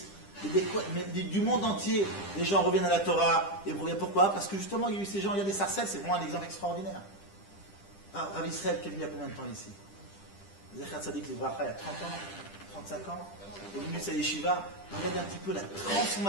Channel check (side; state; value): right; late; 10 ms